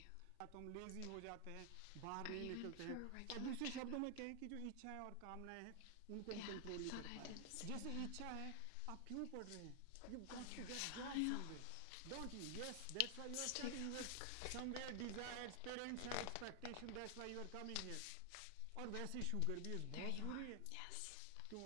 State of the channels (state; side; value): different; both; correlation 0.00